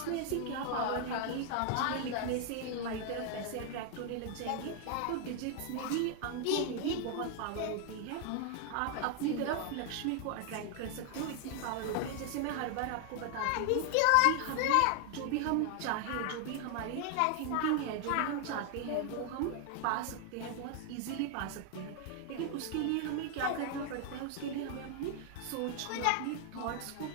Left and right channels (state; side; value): different; both; correlation 0.00